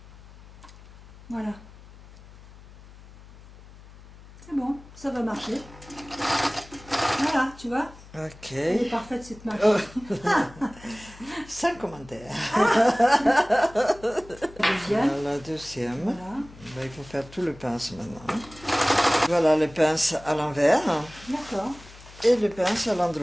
Voilà. C'est bon, ça va marcher. Voilà, tu vois, Ok. elle est parfaite cette marche. Oh. Sans commentaire. Deuxième. La deuxième. Voilà. Ben, il faut faire tout le pince maintenant. Voilà le pince à l'envers D'accord. et le pince à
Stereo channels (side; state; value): left; noise; hum, 20 dB below the sound